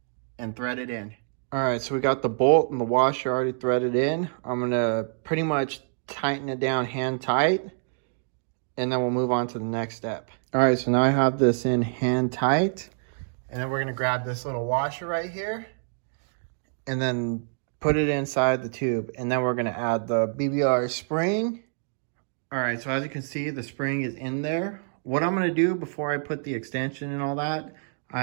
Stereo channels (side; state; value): left; silent; digital silence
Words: and thread it in. All right, so we got the bolt and the washer already threaded in. I'm gonna pretty much tighten it down hand tight, and then we'll move on to the next step. All right, so now I have this in hand tight, and then we're gonna grab this little washer right here, and then put it inside the tube, and then we're gonna add the BBR spring. All right, so as you can see, the spring is in there. What I'm gonna do before I put the extension and all that,